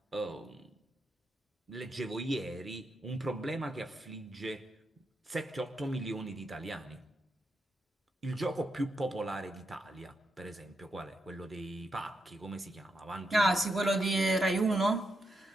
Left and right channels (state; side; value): normal; both; correlation 0.83